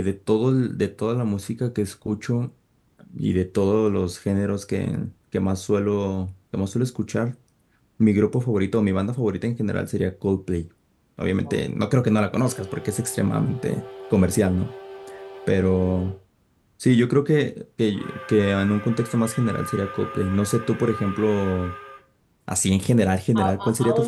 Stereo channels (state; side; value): identical; both; correlation 1.00